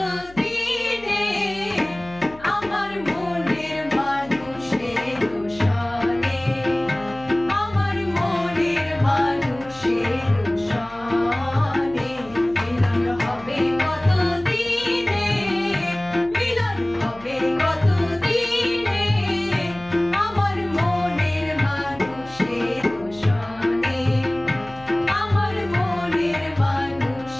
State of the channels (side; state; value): left; noise; hum, 22 dB below the sound